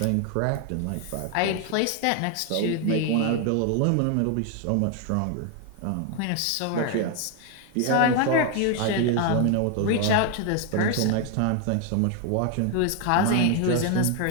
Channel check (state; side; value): different; both; correlation 0.01